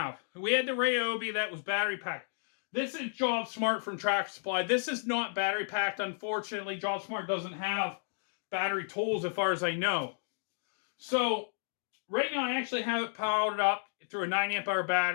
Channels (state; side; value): silent; right; digital silence